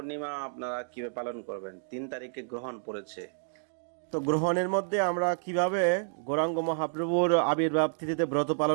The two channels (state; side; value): silent; left; digital silence